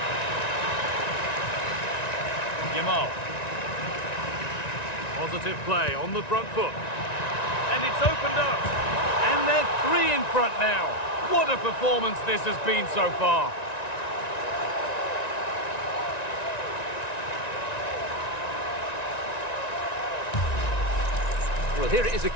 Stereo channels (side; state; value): right; late; 1.9 ms